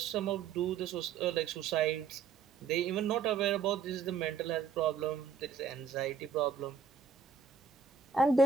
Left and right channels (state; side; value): quieter; left; 6.1 dB